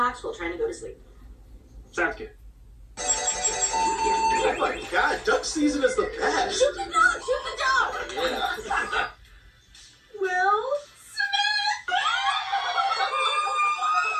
while trying to go to sleep. Sounds good. Oh my god, duck season is the best. Shoot the dog! Shoot the dog! Yeah. Will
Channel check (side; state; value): both; identical; correlation 1.00